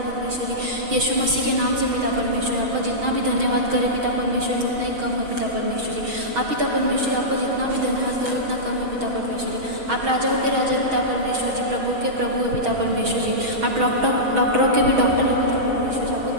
जी, यीशु मसीह के नाम से पिता परमेश्वर। आपका जितना भी धन्यवाद करे पिता परमेश्वर जी उतना ही कम है पिता परमेश्वर जी। आप पिता परमेश्वर जी, आपको जितना भी धन्यवाद करे उतना कम है पिता परमेश्वर जी। आप राजाओं के राजा पिता परमेश्वर जी, प्रभु के प्रभु है पिता परमेश्वर जी। आप डॉक्टरों के भी डॉक्टर है पिता परमेश्वर जी। आपको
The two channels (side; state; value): left; late; 6.3 ms